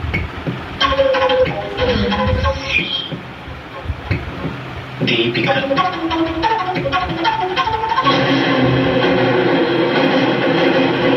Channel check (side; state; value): both; identical; correlation 1.00